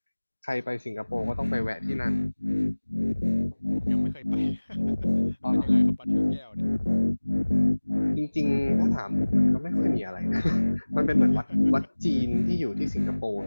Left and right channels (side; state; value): both; inverted; correlation -1.00